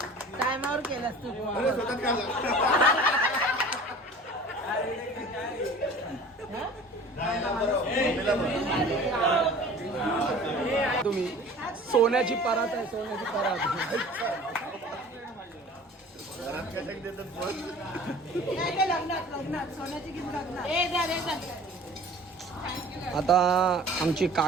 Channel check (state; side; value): normal; both; correlation 0.44